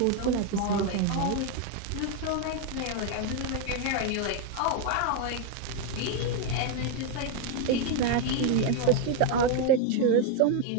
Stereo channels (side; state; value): both; different; correlation 0.01